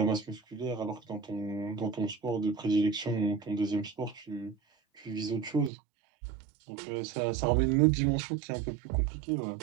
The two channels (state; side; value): drops out; left; at 5.7 s